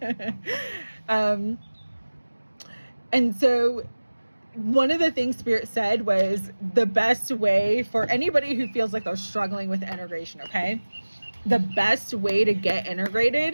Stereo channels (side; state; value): both; inverted; correlation -1.00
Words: And so one of the things Spirit said was the best way for anybody who feels like they're struggling with integration, okay? The best way to get